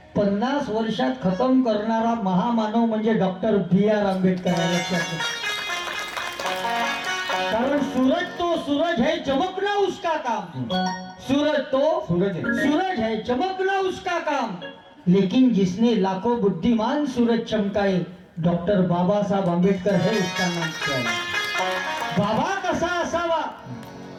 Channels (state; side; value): identical; both; correlation 1.00